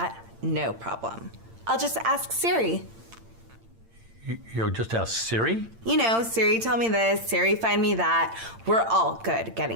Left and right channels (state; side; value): late; left; 8.8 ms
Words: no problem. I'll just ask Siri. You'll just ask Siri? You know, Siri, tell me this, Siri, find me that. We're all good at